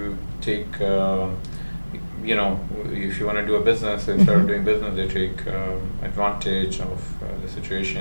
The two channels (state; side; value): inverted; both; correlation -1.00